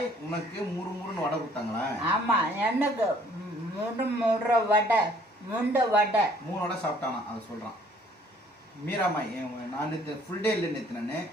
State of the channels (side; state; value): both; normal; correlation 0.59